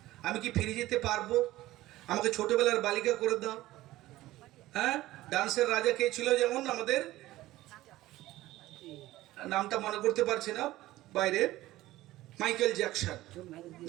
আমি কি ফিরে যেতে পারবো? আমাকে ছোটবেলার বালিকা করে দাও। হ্যাঁ, ডান্সের রাজা কে ছিল? যেমন আমাদের নামটা মনে করতে পারছি না, বাইরে মাইকেল জ্যাকসন,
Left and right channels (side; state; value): left; quieter; 16.5 dB